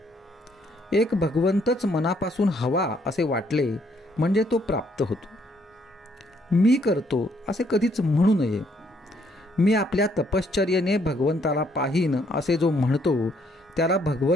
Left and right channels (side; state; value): both; normal; correlation 0.69